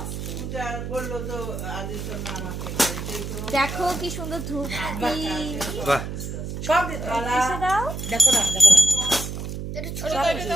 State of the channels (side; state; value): right; noise; hum, 6 dB below the sound